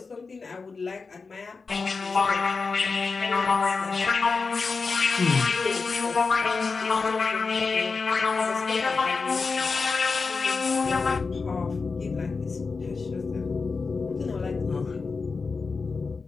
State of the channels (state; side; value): quieter; right; 4.5 dB